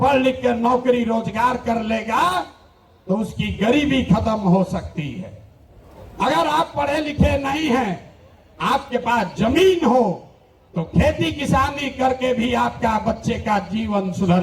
लिख कर नौकरी रोजगार कर लेगा तो उसकी गरीबी खत्म हो सकती है। अगर आप पढ़े लिखे नहीं हैं, आपके पास जमीन हो तो खेती किसानी करके भी आपका बच्चे का जीवन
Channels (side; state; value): both; identical; correlation 1.00